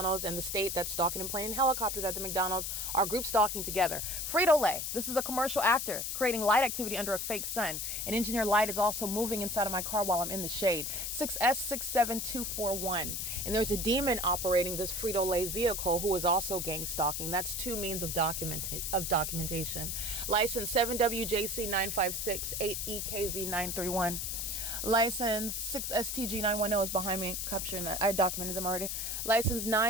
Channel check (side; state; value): left; noise; hiss, 3 dB below the sound